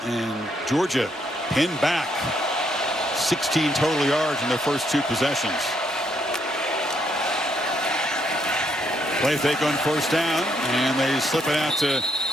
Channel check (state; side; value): normal; both; correlation 0.74